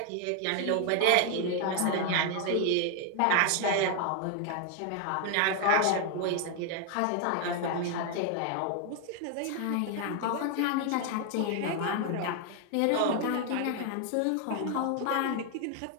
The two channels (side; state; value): both; different; correlation 0.01